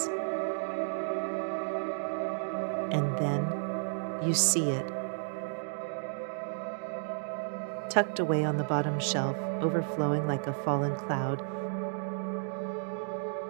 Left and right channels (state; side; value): silent; left; digital silence